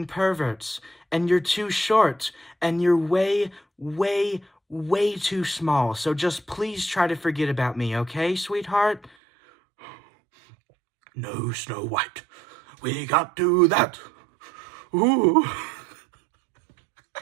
perverts. And you're too short. And you're way too small. So just please try to forget about me, okay, sweetheart? No, Snow White. We can't do that. Ooh.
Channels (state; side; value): drops out; left; at 9.1 s